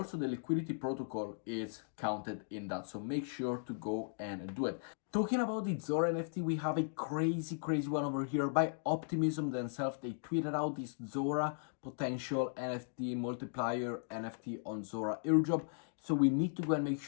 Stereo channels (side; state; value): right; silent; digital silence